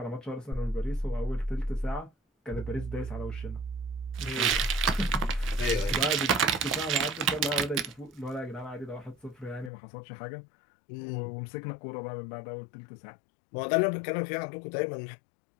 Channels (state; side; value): drops out; right; at 9.7 s